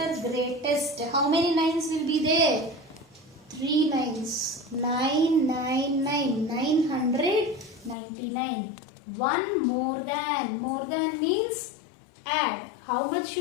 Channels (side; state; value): right; drops out; at 8.0 s